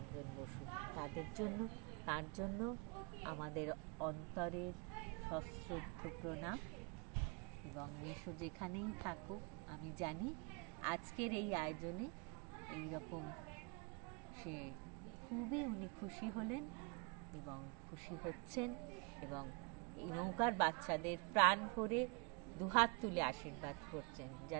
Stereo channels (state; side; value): quieter; left; 32.6 dB